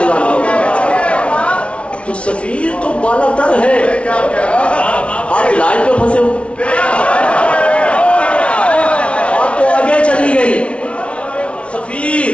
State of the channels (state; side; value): late; right; 0.061 ms